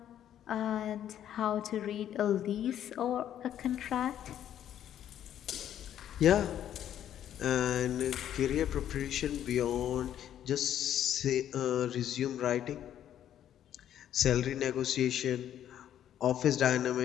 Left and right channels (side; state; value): right; quieter; 10.7 dB